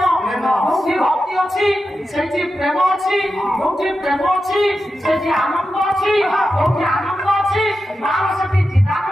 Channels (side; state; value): both; normal; correlation 0.90